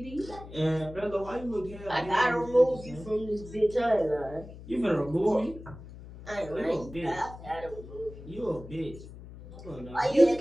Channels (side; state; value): left; noise; hum, 15 dB below the sound